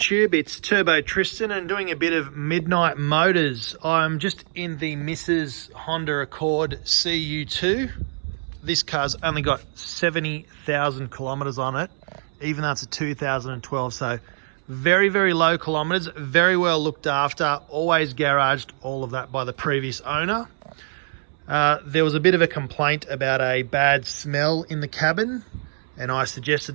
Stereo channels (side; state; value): left; silent; 63 dB below the other